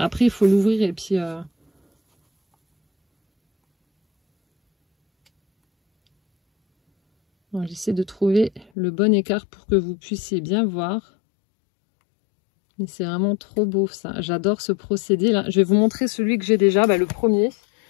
il faut l'ouvrir et puis... J'essaie de trouver le bon écart pour que vous puissiez bien voir. Mais c'est vraiment trop beau, ça. J'adore ce procédé-là. Je vais vous montrer celui que j'ai déjà, le premier.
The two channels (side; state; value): right; drops out; at 8.7 s